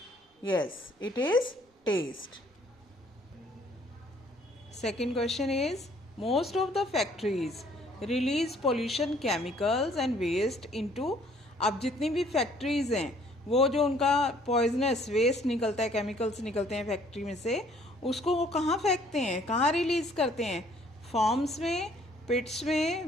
Yes, it is taste. Second question is, most of the factories release pollution chemicals and waste into. अब जितनी भी फैक्ट्रीज हैं वो जो उनका पॉइजनस वेस्ट निकलता है, chemicals निकलते हैं फैक्ट्री में से, उसको वो कहाँ फेंकते हैं, कहाँ रिलीज करते हैं? फॉर्म्स में, पिट्स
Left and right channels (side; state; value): both; normal; correlation 0.60